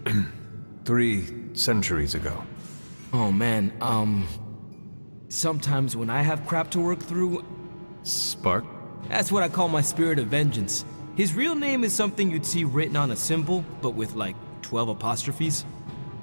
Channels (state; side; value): inverted; both; correlation -1.00